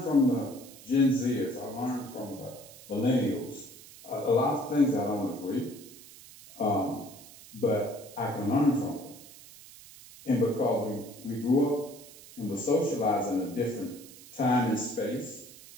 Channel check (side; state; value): right; noise; hiss, 19 dB below the sound